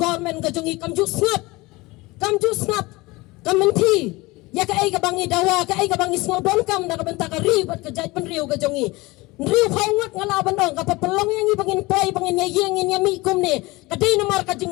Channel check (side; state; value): right; quieter; 22.1 dB